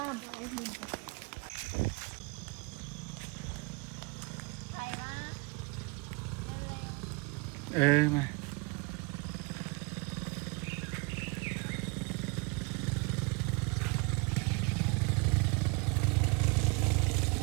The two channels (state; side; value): quieter; left; 30.4 dB